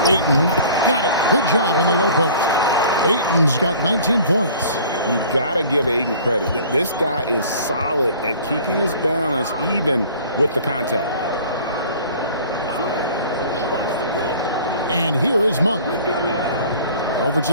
Ayton got it. Good job in the low post. Ayton's got 19 points. You got to give Ayton credit. This guy is solid at keeping his balance even with the contact. And here is Monk. Over to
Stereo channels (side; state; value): both; inverted; correlation -0.47